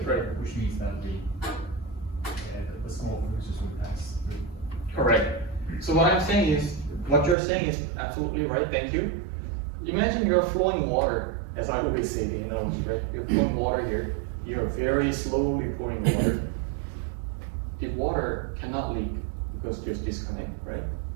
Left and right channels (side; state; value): left; drops out; at 7.4 s